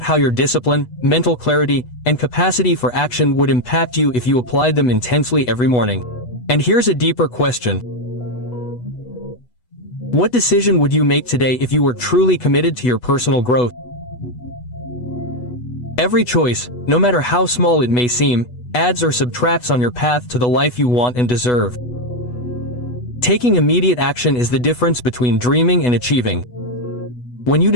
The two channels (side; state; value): right; late; 8.1 ms